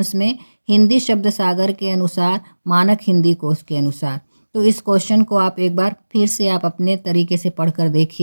में हिंदी शब्द सागर के अनुसार, मानक हिंदी कोश के अनुसार। तो इस क्वेश्चन को आप एक बार फिर से आप अपने तरीके से पढ़कर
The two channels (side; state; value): both; inverted; correlation -1.00